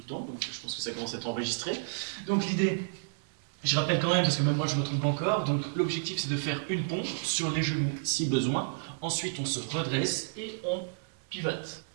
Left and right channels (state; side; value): silent; left; 57 dB below the other